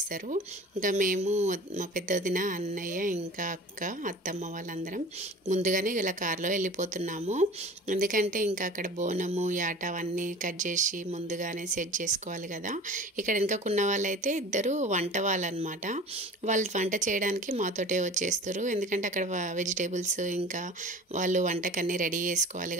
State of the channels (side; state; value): both; normal; correlation 0.40